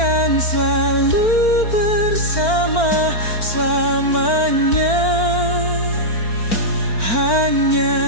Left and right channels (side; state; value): right; late; 4.4 ms